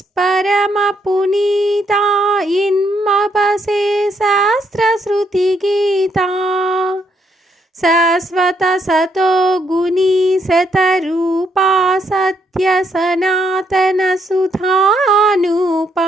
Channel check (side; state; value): both; normal; correlation 0.74